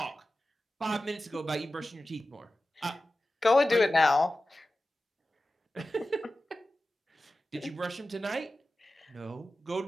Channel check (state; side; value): normal; both; correlation 0.94